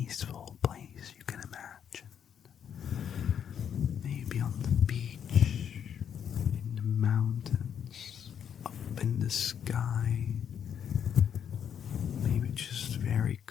place you can imagine. Maybe on the beach, in the mountains, up in the sky. Maybe just very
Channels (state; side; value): quieter; right; 8.5 dB